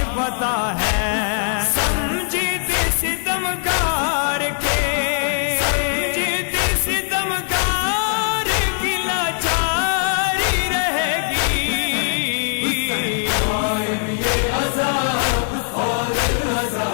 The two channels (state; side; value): silent; right; 66 dB below the other